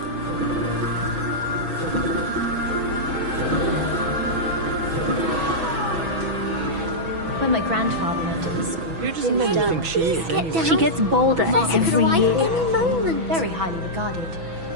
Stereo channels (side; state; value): left; late; 6.1 ms